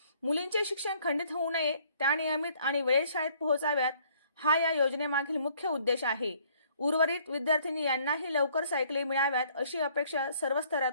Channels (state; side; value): inverted; both; correlation -0.61